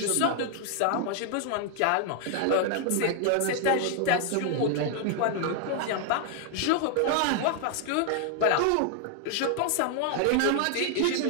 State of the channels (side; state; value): both; different; correlation 0.00